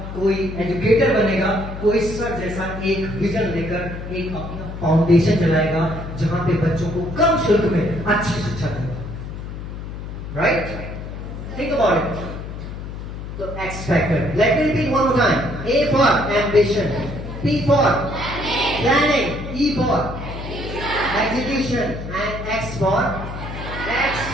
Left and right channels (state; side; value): noise; left; hum, 9 dB below the sound